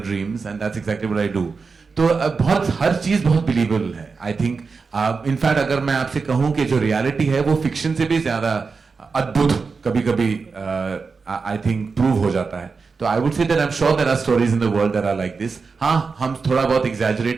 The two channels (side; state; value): left; quieter; 4.8 dB